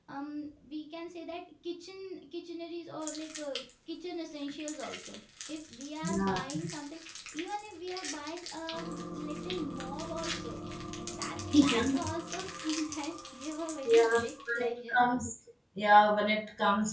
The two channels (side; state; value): both; identical; correlation 1.00